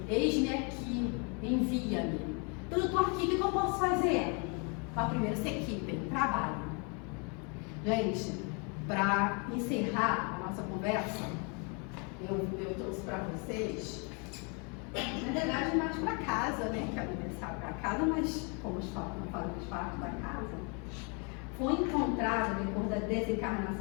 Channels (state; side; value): quieter; right; 34.7 dB